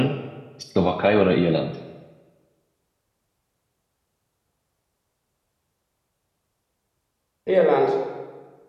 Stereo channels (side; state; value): both; identical; correlation 1.00